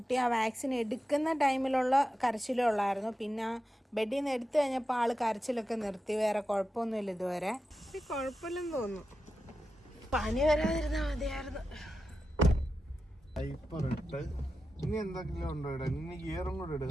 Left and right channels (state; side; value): normal; both; correlation 0.91